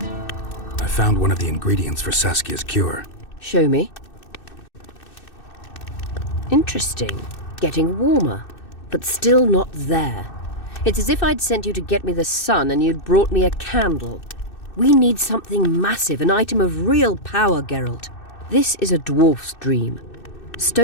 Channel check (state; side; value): late; right; 2.6 ms